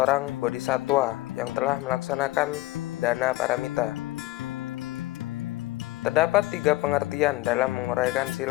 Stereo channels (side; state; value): right; quieter; 18.2 dB